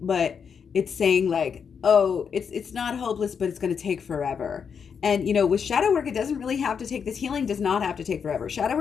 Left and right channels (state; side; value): quieter; right; 6.7 dB